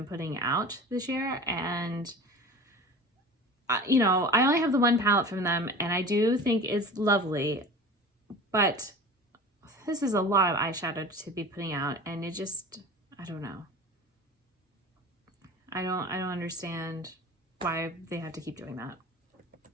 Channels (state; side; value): normal; both; correlation 0.37